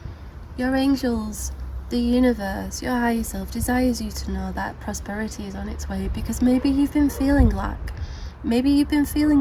Your angels, the universe, your higher self desires you to know that prosperity is on its way, because maybe you've been feeling lack. Maybe you've been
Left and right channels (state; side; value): identical; both; correlation 1.00